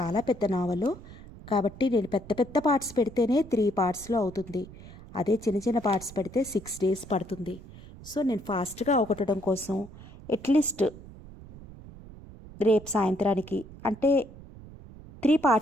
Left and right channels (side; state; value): right; noise; rumble, 17 dB below the sound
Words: పెద్ద నావలు కాబట్టి నేను పెద్ద పెద్ద పార్ట్స్ పెడితేనే 3 పార్ట్స్లో అవుతుంది. అదే చిన్న చిన్న పార్ట్స్ పెడితే 6 days పడుతుంది. సో నేను ఫాస్ట్గా అవగొట్టడం కోసం అట్లీస్ట్ రేపు సాయంత్రానికి అంటే 3